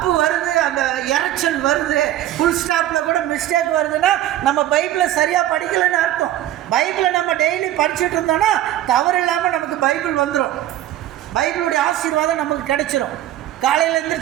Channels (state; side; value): quieter; left; 13.2 dB